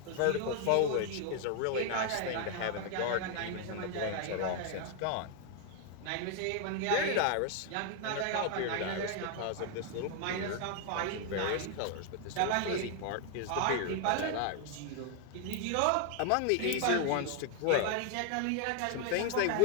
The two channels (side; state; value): both; different; correlation 0.01